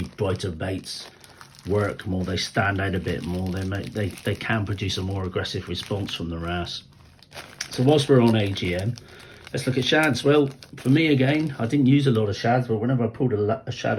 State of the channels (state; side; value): identical; both; correlation 1.00